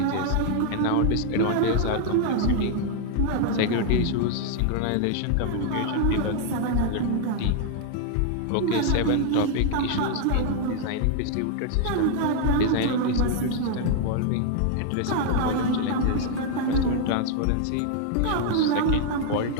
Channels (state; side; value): different; both; correlation 0.00